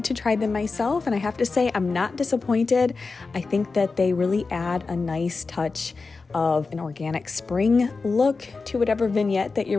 to try them myself, and I have to say I'm not disappointed. I think that they really add a nice touch of an organic spring look to whatever vignette that you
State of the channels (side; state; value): right; quieter; 4.2 dB